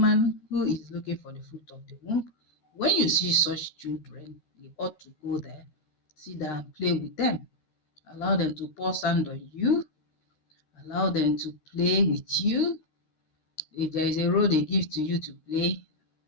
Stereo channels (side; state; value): right; late; 13 ms